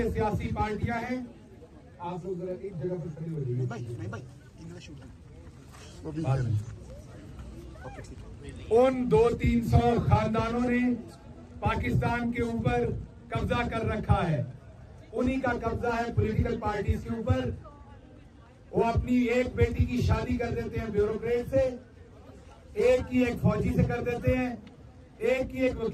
सियासी पार्टियां हैं। आप लोग जरा एक जगह पर खड़े हो जाइए। उन 200-300 खानदानों ने पाकिस्तान के ऊपर कब्जा कर रखा है। उन्हीं का कब्जा है पॉलिटिकल पार्टीज के ऊपर। वो अपनी एक बेटी की शादी कर देते हैं ब्यूरोक्रेट से, एक की एक फौजी से कर देते हैं, एक की एक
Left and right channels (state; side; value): identical; both; correlation 1.00